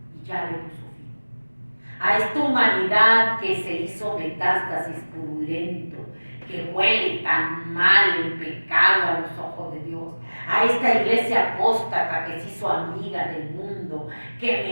y ya le puso fin. A esta humanidad que se hizo metástasis purulento, que huele tan mal el pecado a los ojos de Dios, a esta iglesia apóstata que se hizo amiga del mundo, que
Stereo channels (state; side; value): inverted; both; correlation -1.00